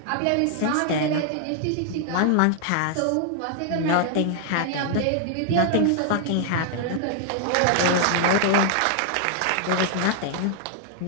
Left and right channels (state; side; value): different; both; correlation 0.00